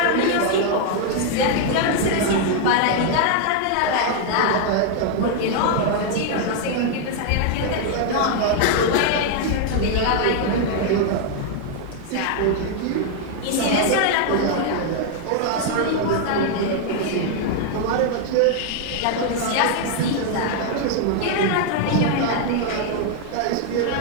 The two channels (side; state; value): both; different; correlation 0.00